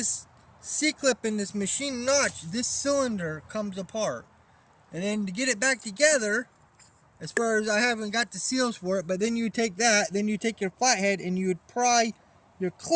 C-clip in this machine notch, this cylinder comes apart. And then to get it back together, as far as I haven't got the seals for it, but then you take that, then you take your flathead and you would pry your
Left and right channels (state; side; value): identical; both; correlation 1.00